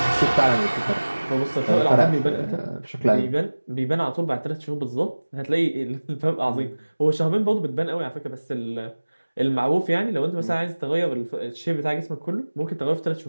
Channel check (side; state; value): both; inverted; correlation -1.00